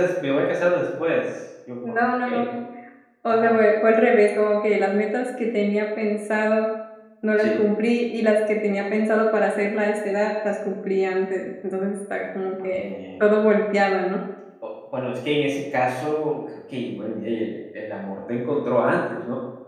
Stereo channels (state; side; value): identical; both; correlation 1.00